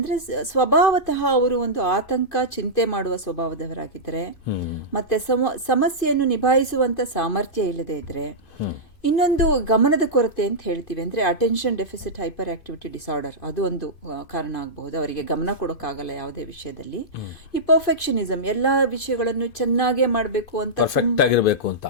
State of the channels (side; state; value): right; late; 2.5 ms